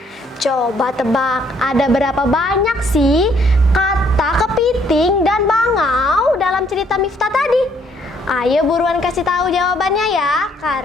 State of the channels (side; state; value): both; normal; correlation 0.66